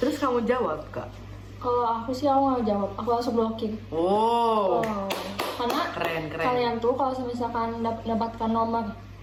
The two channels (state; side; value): identical; both; correlation 1.00